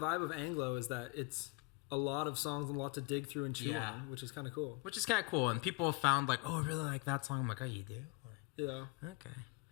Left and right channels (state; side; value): quieter; right; 24.2 dB